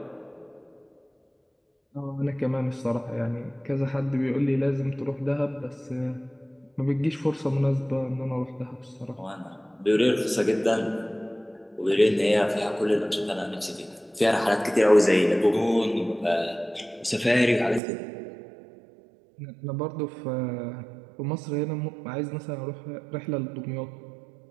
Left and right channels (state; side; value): drops out; left; at 17.8 s